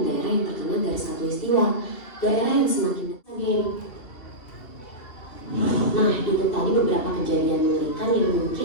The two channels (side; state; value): right; late; 2.7 ms